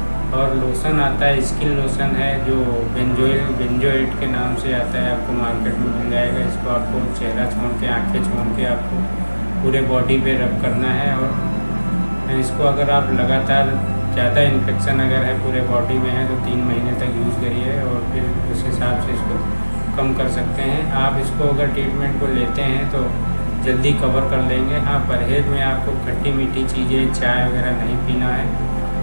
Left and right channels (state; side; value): inverted; both; correlation -1.00